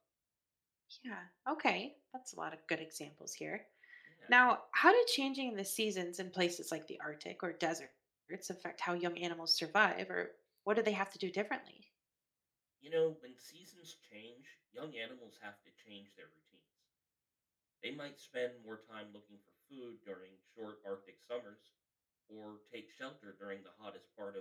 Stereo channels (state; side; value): identical; both; correlation 1.00